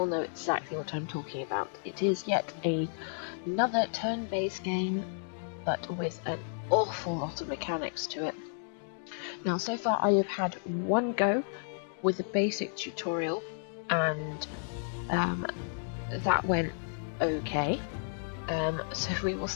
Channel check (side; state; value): right; silent; digital silence